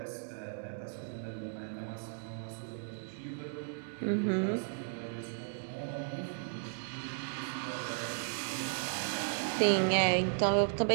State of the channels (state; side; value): silent; left; digital silence